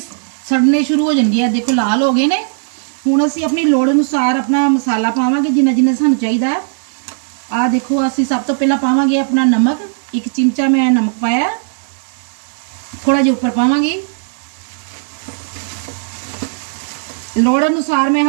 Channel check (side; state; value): left; silent; 66 dB below the other